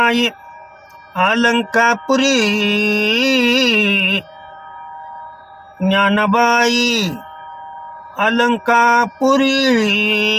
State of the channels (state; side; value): identical; both; correlation 1.00